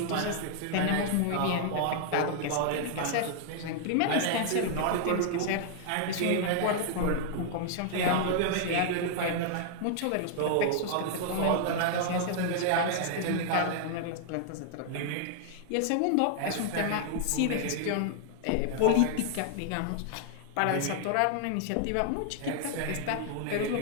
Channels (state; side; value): different; both; correlation 0.00